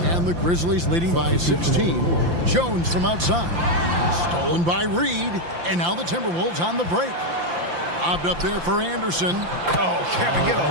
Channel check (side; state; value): left; late; 5.8 ms